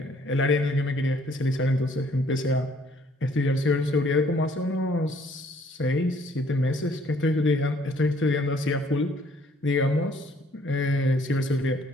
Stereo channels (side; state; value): both; normal; correlation 0.62